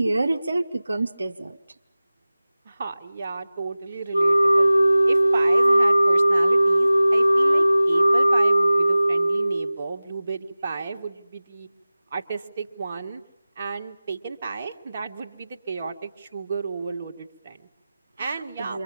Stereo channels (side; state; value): both; inverted; correlation -0.98